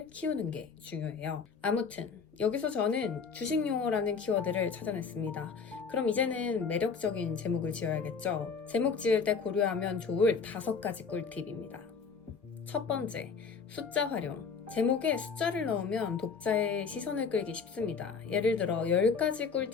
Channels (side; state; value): right; quieter; 5.5 dB